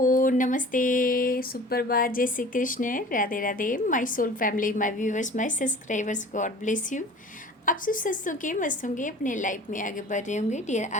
नमस्ते, सुप्रभात, जय Shri Krishna, Radhe Radhe, my soul family, my viewers, my subscribers, God bless you. आप सब स्वस्थ होंगे, मस्त होंगे, अपने लाइफ में आगे बढ़ रहे होंगे। डियर,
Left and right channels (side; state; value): both; normal; correlation 0.44